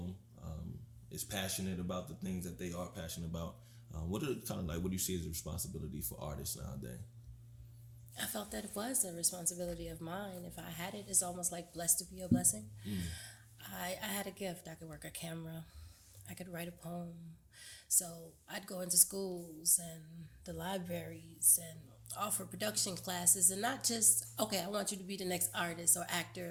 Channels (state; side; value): identical; both; correlation 1.00